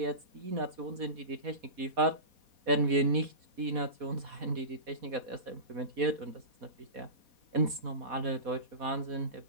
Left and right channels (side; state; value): left; late; 4.2 ms